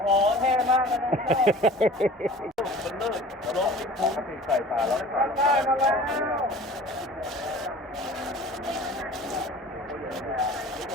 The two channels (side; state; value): both; normal; correlation 0.43